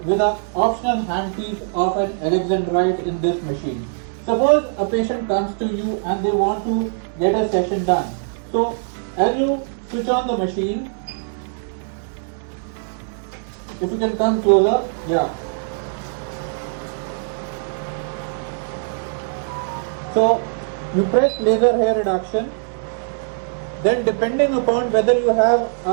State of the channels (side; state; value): left; silent; digital silence